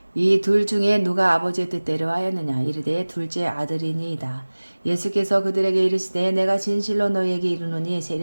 이 둘 중에 누가 아버지의 뜻대로 하였느냐. 이르되 둘째 아들이니이다. 예수께서 그들에게 이르시되 내가 진실로 너희에게 이르노니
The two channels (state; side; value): inverted; both; correlation -1.00